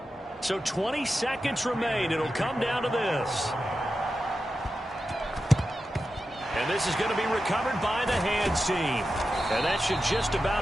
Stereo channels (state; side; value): normal; both; correlation 0.91